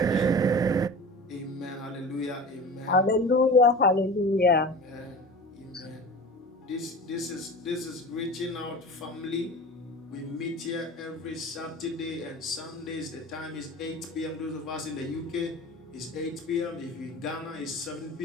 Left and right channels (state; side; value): normal; both; correlation 0.35